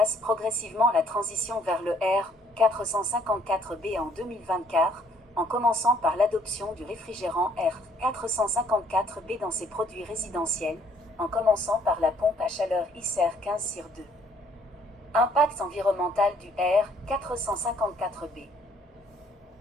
progressivement la transition vers le R454B en 2024, en commençant par l'adoption du réfrigérant R454B dans ses produits résidentiels, en commençant par la pompe à chaleur ICER 15/2. Impact environnemental du R454B.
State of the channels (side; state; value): both; normal; correlation 0.63